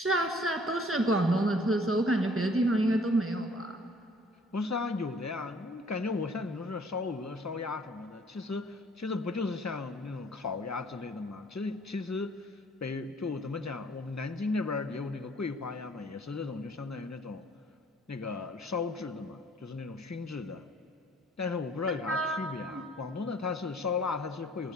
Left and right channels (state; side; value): normal; both; correlation 0.57